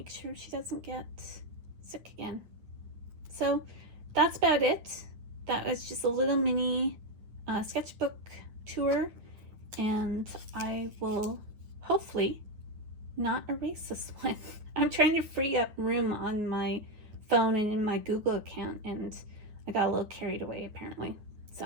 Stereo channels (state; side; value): late; left; 9.6 ms